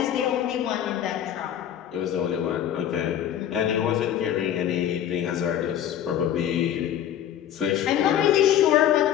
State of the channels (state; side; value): quieter; right; 10.5 dB